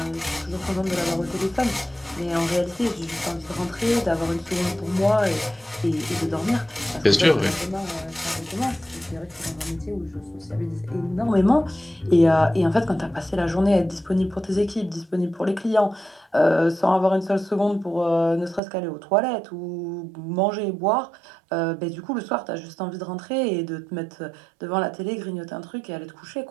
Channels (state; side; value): drops out; left; at 18.6 s